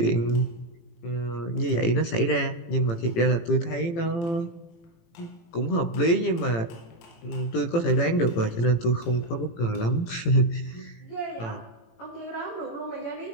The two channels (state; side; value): late; right; 18 ms